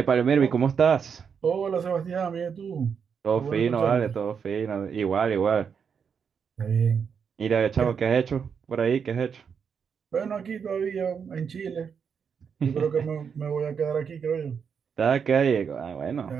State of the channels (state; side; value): quieter; left; 6.7 dB